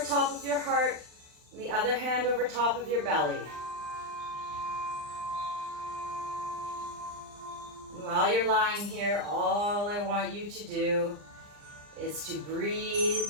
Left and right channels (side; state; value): left; late; 39 ms